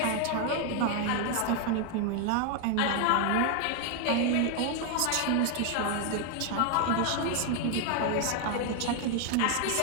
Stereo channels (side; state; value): both; different; correlation 0.00